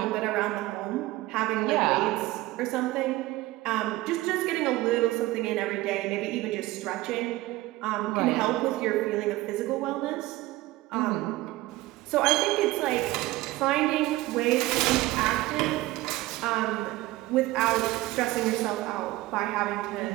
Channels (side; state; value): left; quieter; 18.2 dB